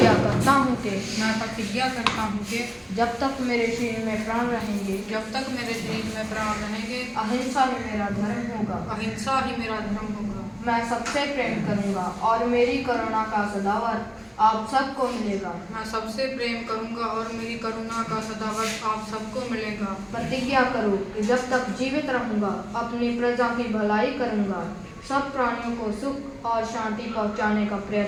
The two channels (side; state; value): both; identical; correlation 1.00